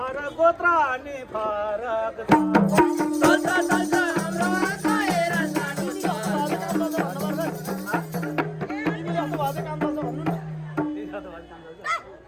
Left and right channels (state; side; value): identical; both; correlation 1.00